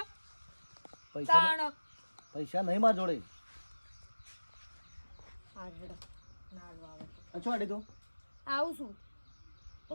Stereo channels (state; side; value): inverted; both; correlation -1.00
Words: પૈસા તાણ પૈસા નહીં માર જોડે હાર હેડો નાડવા આવે અચ્છા આડી તું આવું છું